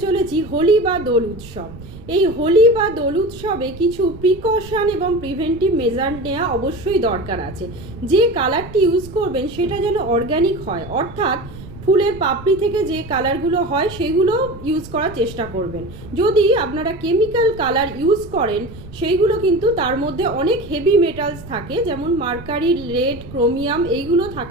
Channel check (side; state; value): right; noise; rumble, 16 dB below the sound